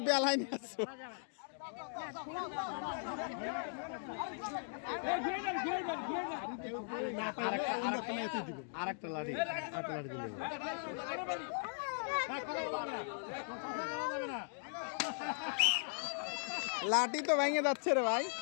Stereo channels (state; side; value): silent; right; digital silence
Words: বেলায় নিয়ে আসছো। আরেকটা লাঠি দিলে লাঠি তো ভেঙে যাচ্ছে রে ভাই।